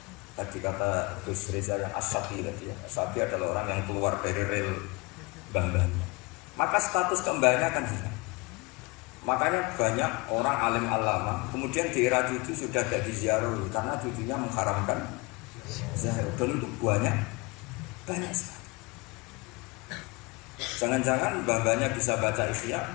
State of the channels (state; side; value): quieter; right; 26.2 dB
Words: tadi kata Gus Reza yang As-Safi tadi ya, As-Safi adalah orang yang keluar dari rel mbah-mbahnya, maka status kembahnya akan hilang. Makanya banyak orang alim alama kemudian di era cucu sudah jadi ziarah karena cucunya mengharamkan ziarah, dan itu banyak sekali. Jangan-jangan mbah-mbahnya bisa baca Ihya,